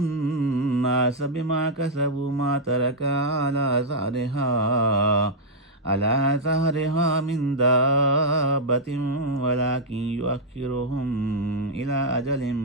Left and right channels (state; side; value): normal; both; correlation -0.05